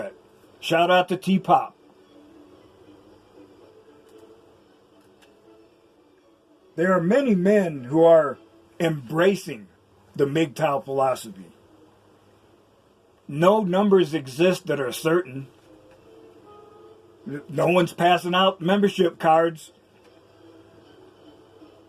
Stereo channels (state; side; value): identical; both; correlation 1.00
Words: Shout out to T-Pop. There are many men who are embracing the MGTOW philosophy. No numbers exist that are certain. No one's passing out membership cards.